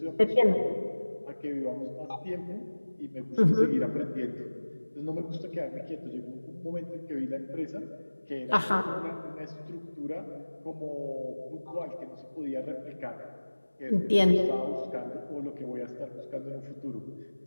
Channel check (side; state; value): both; inverted; correlation -1.00